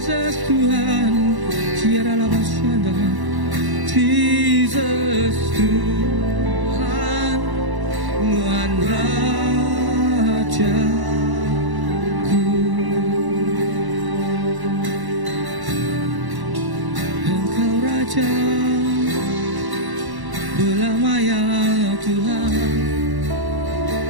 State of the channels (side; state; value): left; late; 1.0 ms